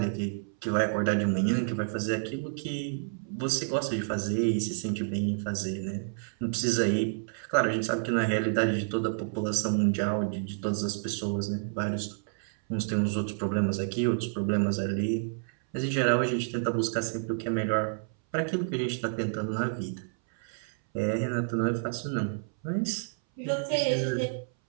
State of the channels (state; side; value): silent; left; 58 dB below the other